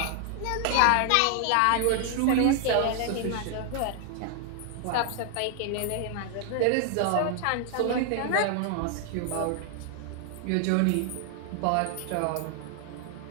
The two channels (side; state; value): both; different; correlation 0.00